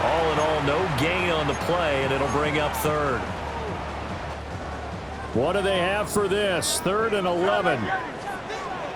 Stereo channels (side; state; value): both; identical; correlation 1.00